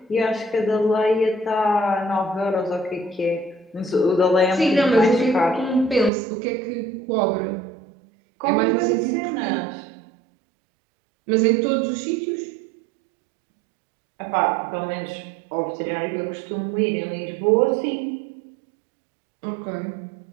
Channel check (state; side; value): drops out; left; at 6.1 s